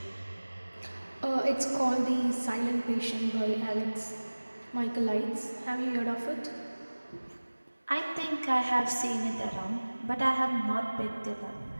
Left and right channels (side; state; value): both; inverted; correlation -1.00